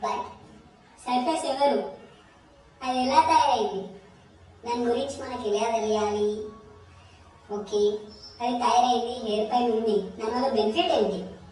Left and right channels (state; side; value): identical; both; correlation 1.00